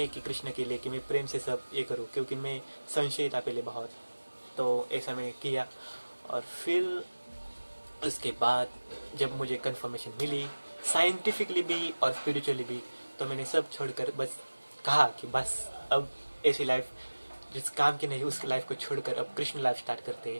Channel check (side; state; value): both; inverted; correlation -1.00